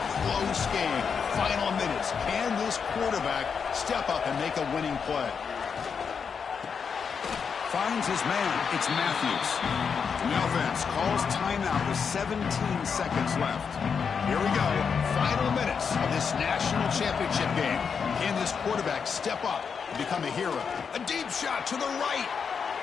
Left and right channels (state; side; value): quieter; right; 6.2 dB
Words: Close game. Final minutes. Can this quarterback step up and make a winning play? Finds his man. It's Matthews. The offense calls timeout with 17 seconds left. Here we go. Final minutes of this national championship game. Can this quarterback step up and become a hero? A deep shot to the right.